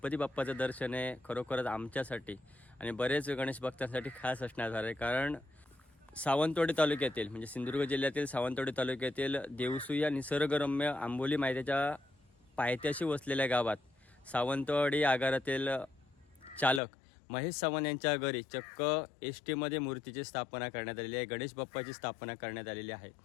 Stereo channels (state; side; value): drops out; right; at 16.8 s